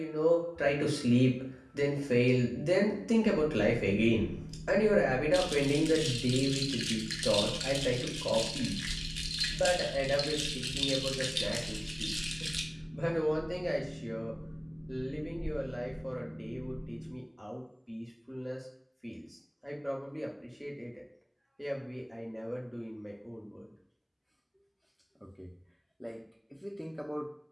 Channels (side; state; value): both; identical; correlation 1.00